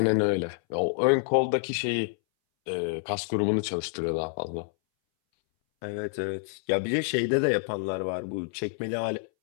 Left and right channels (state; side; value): silent; right; 59 dB below the other